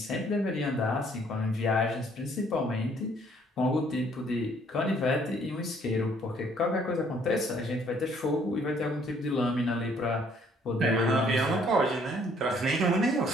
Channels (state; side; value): normal; both; correlation 0.63